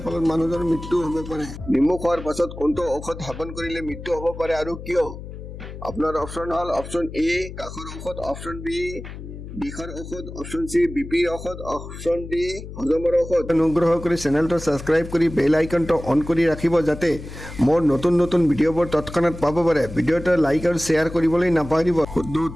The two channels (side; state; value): left; noise; hum, 12 dB below the sound